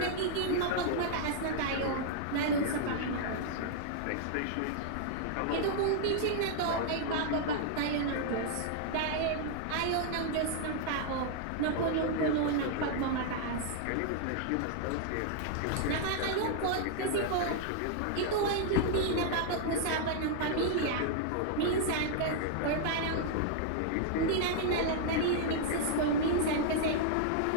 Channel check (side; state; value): both; different; correlation -0.01